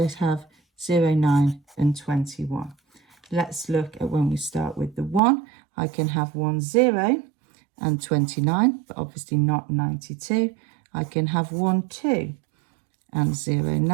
have 0, 9 and 21. Let's look at when we start with the 1. I can have 1, 0 and 29, but obviously not 92. I can have 1, 2 and 0,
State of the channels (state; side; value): drops out; left; at 5.2 s